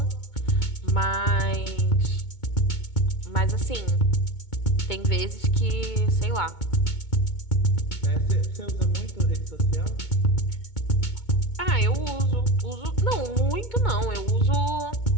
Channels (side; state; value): right; late; 2.2 ms